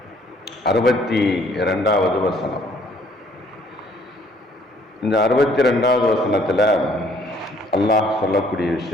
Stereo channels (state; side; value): normal; both; correlation 0.62